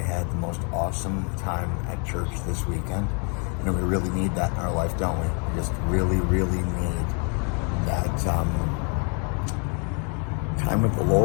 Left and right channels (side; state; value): right; quieter; 37.1 dB